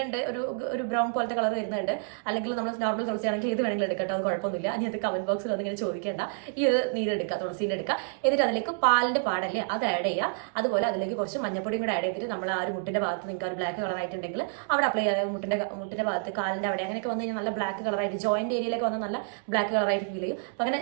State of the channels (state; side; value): silent; left; 59 dB below the other